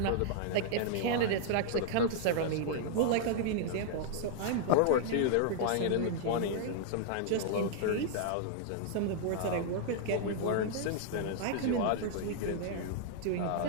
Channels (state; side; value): different; both; correlation -0.01